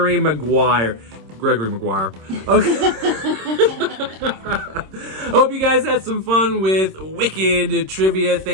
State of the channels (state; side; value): late; left; 26 ms